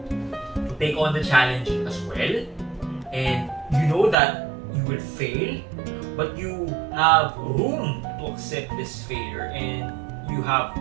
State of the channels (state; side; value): drops out; left; at 4.2 s